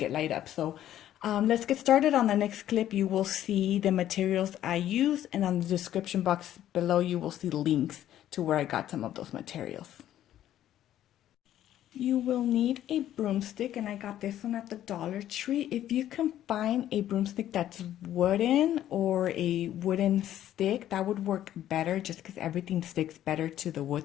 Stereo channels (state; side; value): quieter; right; 12.0 dB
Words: it light up. So let's get started. On the next clip, you will see the materials I use, and on the description box below, you will see links to where I got some of those materials. You will need a broomstick, and I got this one at the Dollar Tree. If you can find a broomstick that's wooden or a wooden stick, that would work better just because everything sticks better to the